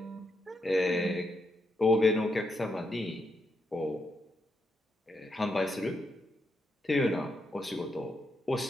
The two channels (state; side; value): normal; both; correlation 0.81